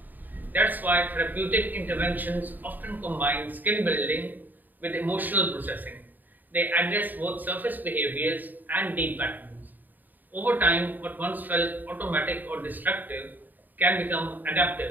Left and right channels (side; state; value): left; late; 0.087 ms